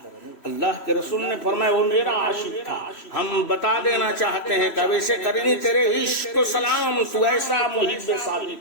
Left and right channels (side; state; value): right; late; 3.1 ms